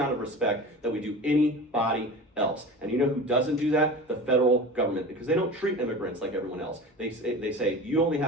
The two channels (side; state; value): both; normal; correlation 0.33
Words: of respect that we do anybody else. And you know who doesn't do that? The federal government, because they don't treat immigrants like everyone else. They say you only